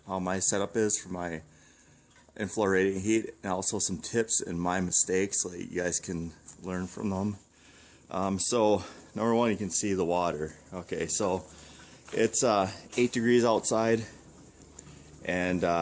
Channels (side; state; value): both; identical; correlation 1.00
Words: how my setup is for my inflow radiant heat, and also some tips and my mistakes so that you guys can learn from them. So number one, you can see the water. Okay, so it's 8 degrees outside, and